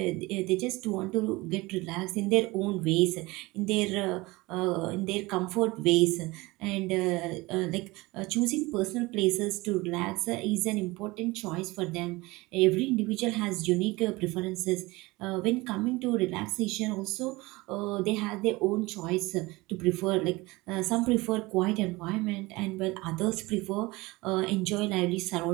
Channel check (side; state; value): left; quieter; 22.1 dB